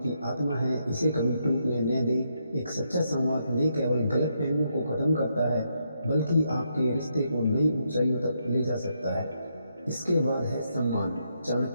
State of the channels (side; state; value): both; inverted; correlation -0.79